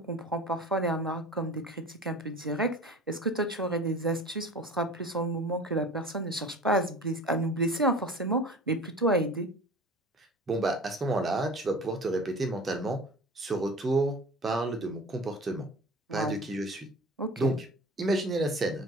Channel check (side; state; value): both; normal; correlation 0.40